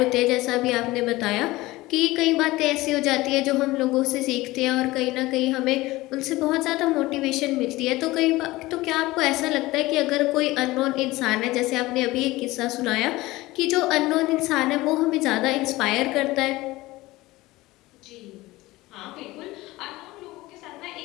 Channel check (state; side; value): quieter; right; 19.2 dB